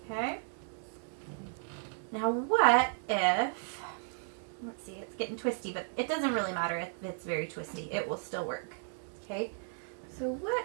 Okay. Now what if, let's see, it's getting twisty, but it doesn't really matter if it's very twisty. It will still work. Okay. So what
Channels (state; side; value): silent; left; 55 dB below the other